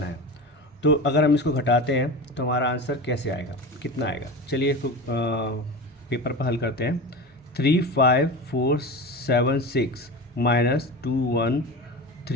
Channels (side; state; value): both; normal; correlation 0.28